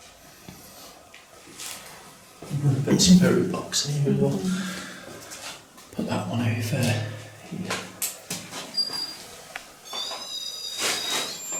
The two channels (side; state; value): both; identical; correlation 1.00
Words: Put some very box in the middle. Put that one over.